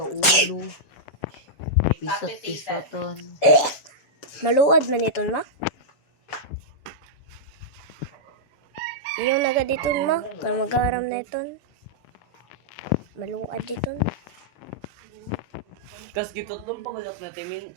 ulo. Pisat-pisatan. Maluad man iton ma. Yung naga diton ma, kung magaram na iton. Maluad diton. Kas gitotong pangalak na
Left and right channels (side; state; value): right; late; 7.1 ms